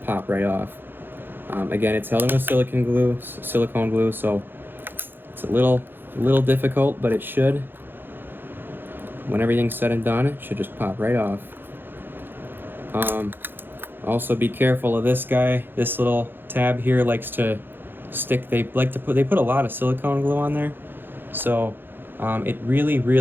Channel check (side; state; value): left; late; 0.099 ms